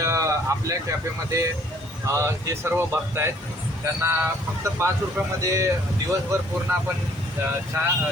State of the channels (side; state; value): both; normal; correlation 0.60